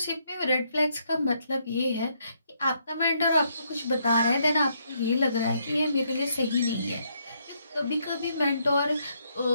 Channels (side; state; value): both; inverted; correlation -0.74